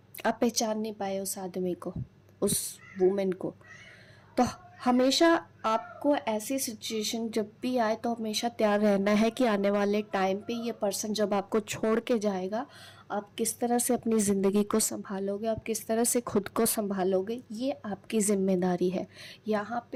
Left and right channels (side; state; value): both; identical; correlation 1.00